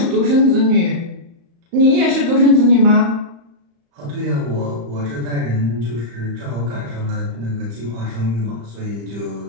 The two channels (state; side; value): late; left; 35 ms